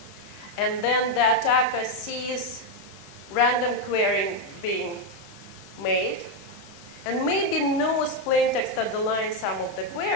And then the attacker sees random querying being made, and maybe knows plaintext underlying some of the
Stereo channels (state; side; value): late; right; 15 ms